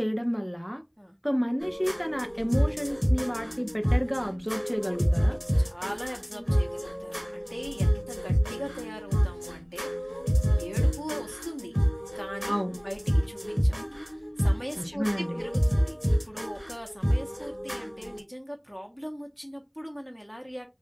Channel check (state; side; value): identical; both; correlation 1.00